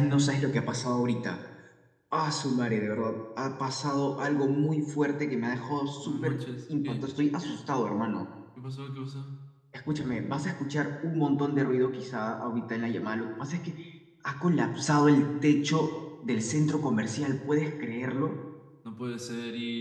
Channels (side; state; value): both; identical; correlation 1.00